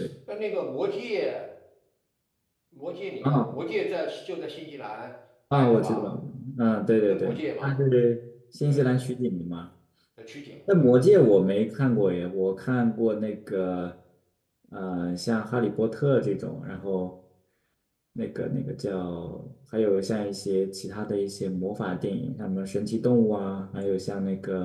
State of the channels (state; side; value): identical; both; correlation 1.00